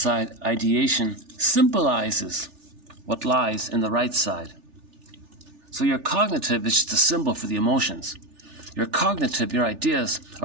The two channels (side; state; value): left; late; 3.4 ms